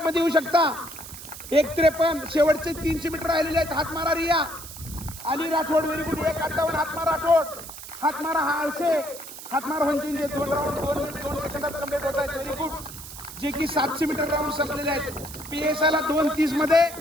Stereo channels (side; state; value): right; noise; hiss, 13 dB below the sound